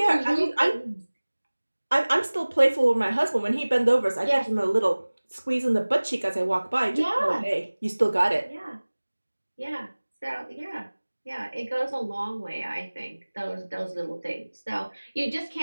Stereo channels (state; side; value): inverted; both; correlation -1.00